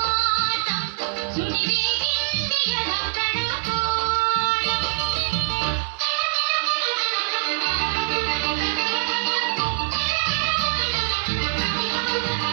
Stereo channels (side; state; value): left; silent; 56 dB below the other